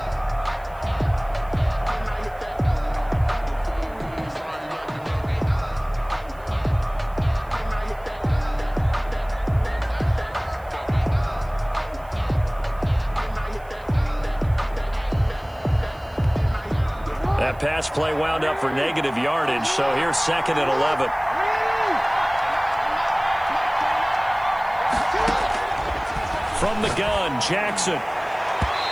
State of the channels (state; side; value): noise; right; hiss, 28 dB below the sound